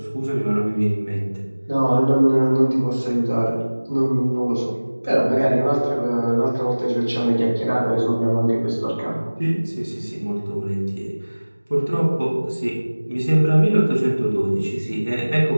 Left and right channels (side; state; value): both; inverted; correlation -1.00